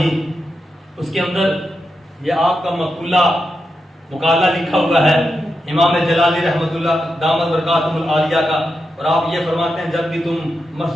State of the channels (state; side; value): normal; both; correlation 0.87